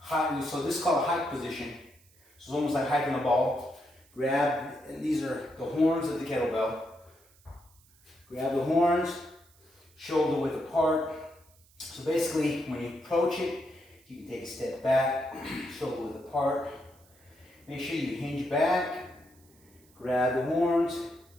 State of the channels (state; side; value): noise; right; hiss, 29 dB below the sound